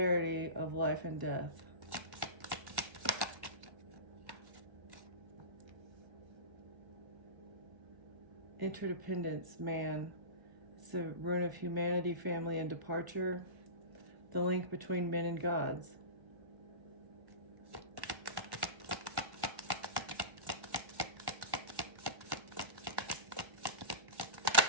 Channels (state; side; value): late; left; 1.1 ms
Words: of life and death. Interdependence, man. It's the rune of humanity, family, and departure. The link between men and gods.